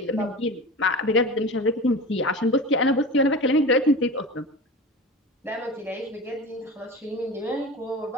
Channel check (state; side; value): normal; both; correlation 0.31